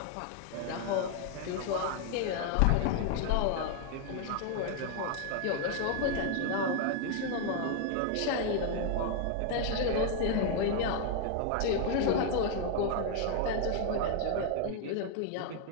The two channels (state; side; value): different; both; correlation 0.00